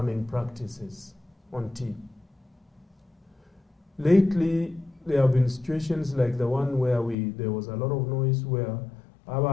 practices on tea. Lately, there have been situations like the one where there was a lot of noise where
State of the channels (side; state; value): right; drops out; at 7.2 s